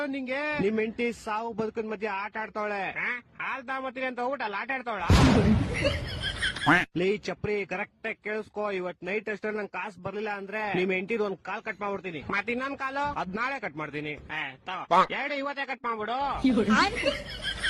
ನಿಂಗೆ. ನಿಮ್ ಹೆಂಡತಿ ಸಾವು ಬದುಕಿನ ಮಧ್ಯೆ ಆಟ ಆಡ್ತಾವಳೆ. ಹಾಲ್ ತಗೊಂಬತ್ತೀನಿ ಅಂತ ಹೋಗ್ಬಿಟ್ಟು ಆಟ ಆಡ್ತಾವಳ. ಲೇ ಚಪ್ರಿ, ಕರೆಕ್ಟ್ ಆಗಿ ಕೇಳಿಸ್ಕೋ. ಇವತ್ ನೈಟ್ ಅಷ್ಟೇ ನಂಗೆ ಕಾಸು ಬರ್ಲಿಲ್ಲ ಅಂದ್ರೆ ನಿಮ್ ಹೆಂಡತಿದ್ ಒಂದ್ ಕಾಲ್ ಕಟ್ ಮಾಡ್ಬಿಡ್ತೀನಿ. ಮತ್ ಇನ್ನೊಂದ್ ಕಾಲು ಅದ್ ನಾಳೆ ಕಟ್ ಮಾಡ್ತೀನಿ. ಎರಡು ಇವತ್ತೇ ಕಟ್ ಮಾಡ್ಬಿಡು.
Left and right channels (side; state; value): both; identical; correlation 1.00